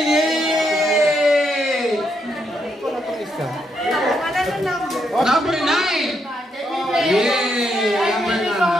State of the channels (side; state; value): both; normal; correlation 0.78